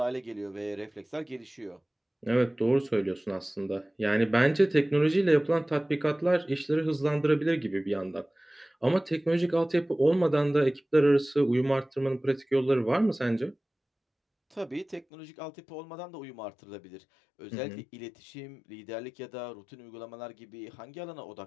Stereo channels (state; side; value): drops out; right; at 15.1 s